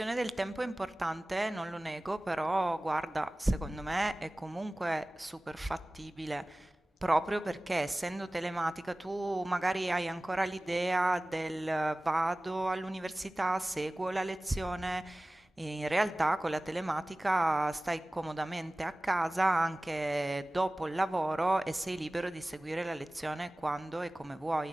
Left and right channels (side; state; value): both; normal; correlation 0.98